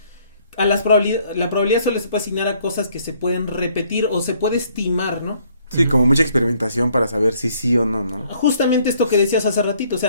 la probabilidad solo se puede asignar a cosas que se pueden repetir o se puede estimar, ¿no? Sí, como mucha experimentación para saber si sí o no, ¿no? Justamente esto que decías hace ratito, o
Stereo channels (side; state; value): both; inverted; correlation -0.64